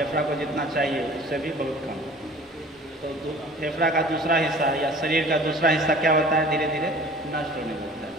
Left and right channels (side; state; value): both; normal; correlation 0.46